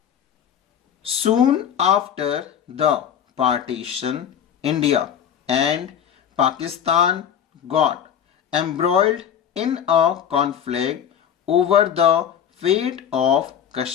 Soon after the partition, India and Pakistan got embroiled in a conflict over the fate of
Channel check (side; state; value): right; quieter; 8.9 dB